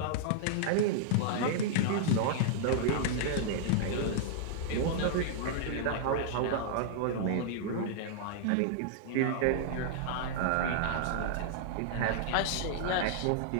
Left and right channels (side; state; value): both; different; correlation -0.01